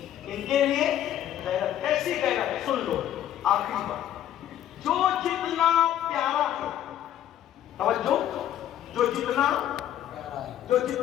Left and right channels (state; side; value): quieter; right; 11.4 dB